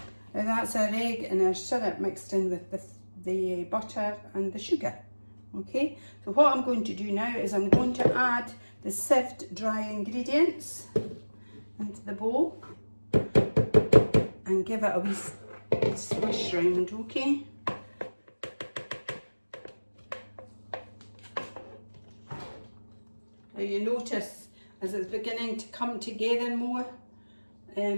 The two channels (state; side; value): inverted; both; correlation -1.00